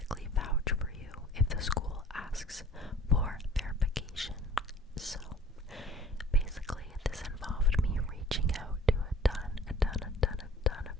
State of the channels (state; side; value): normal; both; correlation 0.50